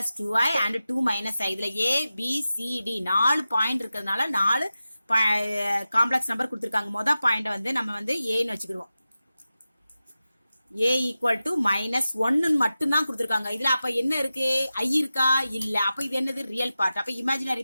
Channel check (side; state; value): both; inverted; correlation -0.94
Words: 2i and 2 minus i. இதுல a, b, c, d 4 point இருக்கிறதுனால 4 காம்ப்ளெக்ஸ் நம்பர் கொடுத்திருக்காங்க. மொதல் பாயிண்ட் வந்து நம்ம வந்து ஏன்னு வச்சுக்கிடுவோம். a ஈக்குவல் டு -1 மட்டும் தான் கொடுத்திருக்காங்க. இதுல அப்ப என்ன இருக்கு? i இருக்கா? இல்ல. அப்ப இது என்னது? Real part. அப்ப